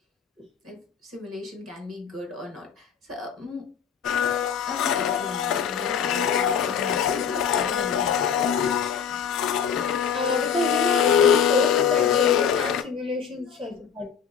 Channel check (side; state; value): right; quieter; 7.4 dB